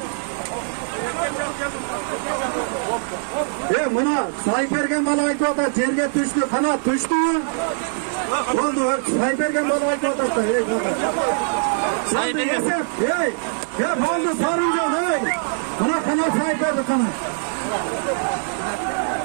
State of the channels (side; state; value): left; silent; 64 dB below the other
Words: Mına saybergen bana ait oda жерге düştü, kanat düştü. Oldu, saybergen bana ait oda. Oldu sarıyla. Bana kanat sayberdi sana.